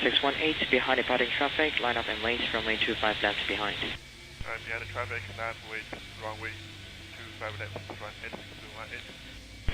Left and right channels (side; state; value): both; identical; correlation 1.00